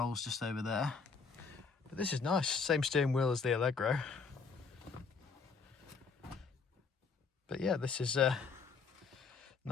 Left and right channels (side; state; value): right; quieter; 5.1 dB